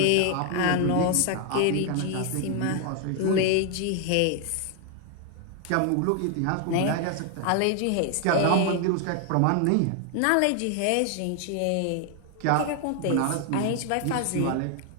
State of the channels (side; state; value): both; different; correlation 0.00